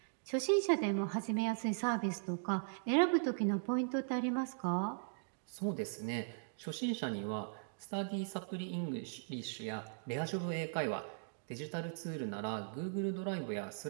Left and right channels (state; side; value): silent; left; digital silence